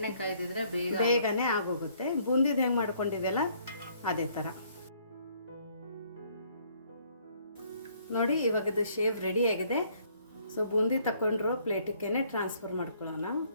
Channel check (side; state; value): both; inverted; correlation -0.64